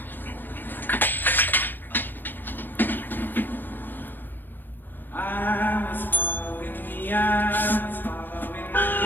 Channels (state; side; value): late; right; 0.093 ms